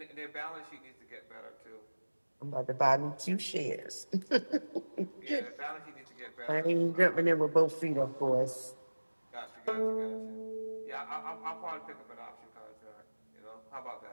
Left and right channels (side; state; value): both; inverted; correlation -1.00